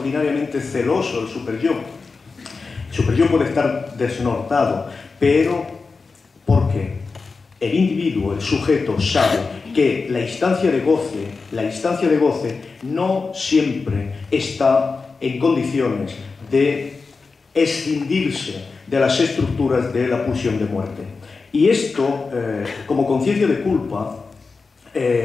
celoso el superyo. El superyo puede estar desnortado, pero porque el individuo, el sujeto, sabe que la instancia de goce no siempre está en condiciones de escindirse de las estructuras de la pulsión de muerte. Y esto, como conciencia de culpa,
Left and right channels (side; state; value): right; quieter; 4.4 dB